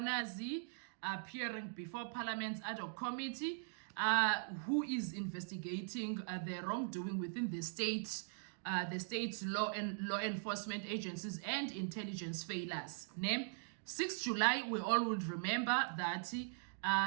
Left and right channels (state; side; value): silent; left; digital silence